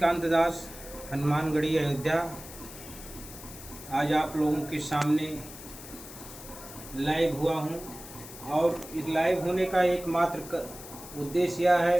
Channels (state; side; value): noise; left; hiss, 15 dB below the sound